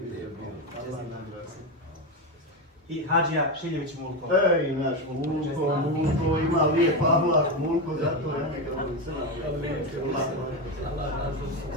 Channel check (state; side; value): normal; both; correlation 0.13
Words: I Hadžija Šiljević Mulko. Ej, naš Mulko ima lijep ahlak, Mulko, zato ja njega volim crna.